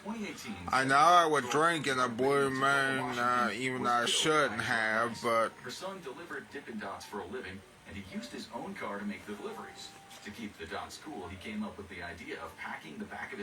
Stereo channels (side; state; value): both; identical; correlation 1.00